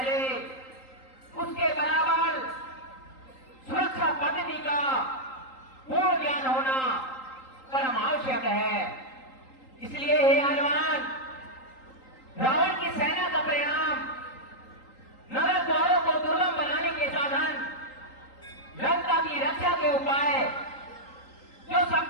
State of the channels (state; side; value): late; right; 3.8 ms